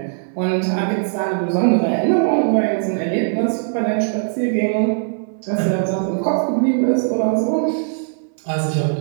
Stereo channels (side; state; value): left; silent; 63 dB below the other